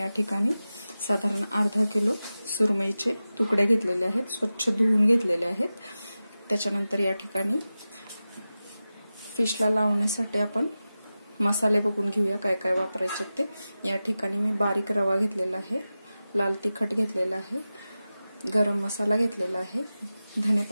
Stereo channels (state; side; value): inverted; both; correlation -0.95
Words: ठिकाणी साधारण अर्धा किलो सुरमईचे तुकडे घेतलेले आहेत, स्वच्छ धुवून घेतलेले आहेत। त्याच्यानंतर या ठिकाणी फिशला लावण्यासाठी आपण मसाले बघून घेऊया काय काय वापरायचे ते। या ठिकाणी मी बारीक रवा घेतलेला आहे, लाल तिखट घेतलेला आहे, गरम मसाला घेतलेला आहे, धने